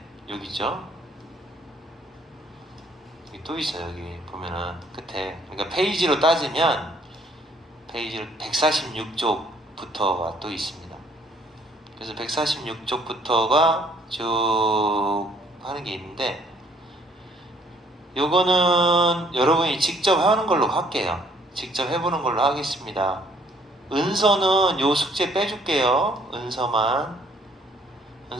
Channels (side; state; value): both; normal; correlation 0.62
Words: 여기 있죠? 여기 또 있어요. 여기 보면은 끝에, 그러니까 페이지로 따지면 페이지를 146쪽부터가 또 있습니다. 그래서 146쪽부터가 쭉 하는 게 있는데, 요거는 여러분이 직접 하는 걸로 할게요. 직접 해보는 걸로 하겠습니다. 은서는 요 숙제 빼줄게요. 은서만.